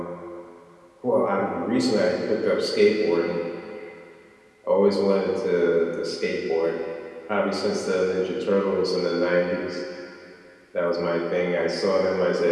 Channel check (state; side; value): identical; both; correlation 1.00